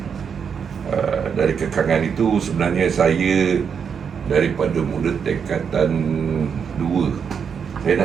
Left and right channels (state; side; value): quieter; left; 6.8 dB